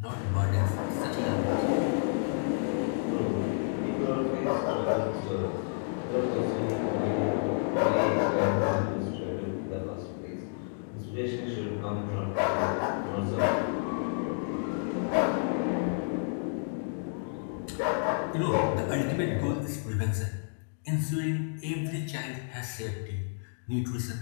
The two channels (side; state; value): right; silent; digital silence